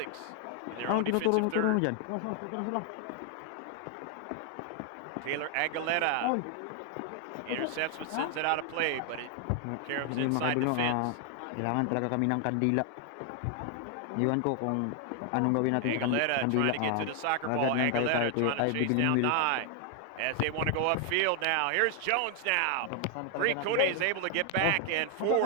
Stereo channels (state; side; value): different; both; correlation 0.00